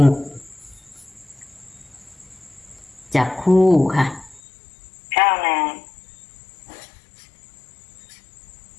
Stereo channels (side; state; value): right; drops out; at 4.4 s